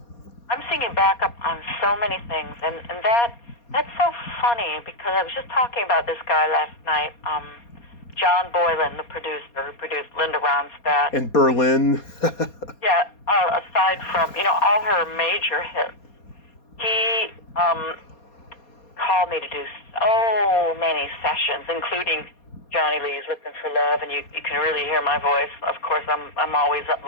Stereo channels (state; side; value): late; right; 4.2 ms